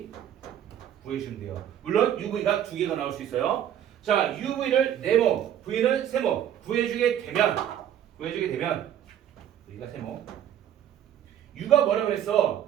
구해주시면 돼요. 물론 UV가 두 개가 나올 수 있어요. 자, UV를 네모, V는 세모 구해주게 되면 V가 세모. U가 뭐라고 그랬어?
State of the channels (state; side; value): quieter; left; 10.3 dB